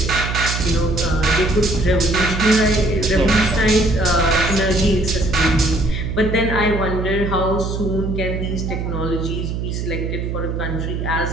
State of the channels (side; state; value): right; noise; hum, 3 dB below the sound